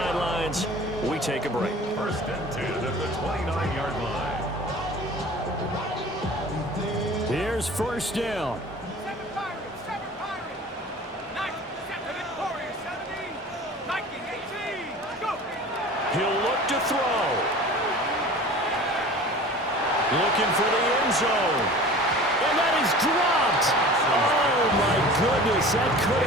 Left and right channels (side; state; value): both; normal; correlation 0.41